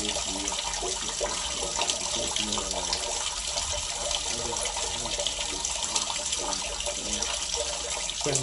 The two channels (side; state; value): both; identical; correlation 1.00